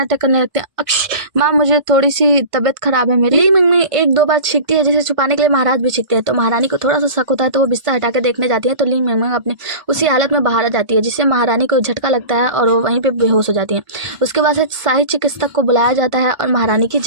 करने लगते हैं, अक्ष माँ मुझे थोड़ी सी तबीयत खराब है मेरी। ली मैंगमैंग एक दो बार छींकती है, जिसे छुपाने के लिए महाराज भी छींकते हैं। तो महारानी को थोड़ा सा शक होता है, तो वो बिस्तर हटा के देखने जाती है। तो ली मैंगमैंग अपनी उसी हालत में बाहर आ जाती है, जिससे महारानी को झटका लगता है और वो वहीं पे बेहोश हो जाती है। उसके बाद से शाही चिकित्सक को बुलाया जाता है और महारानी की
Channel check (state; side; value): late; left; 1.5 ms